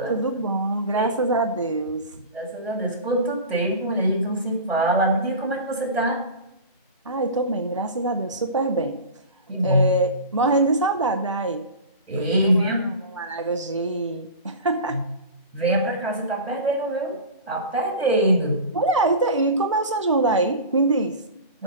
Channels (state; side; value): inverted; both; correlation -0.32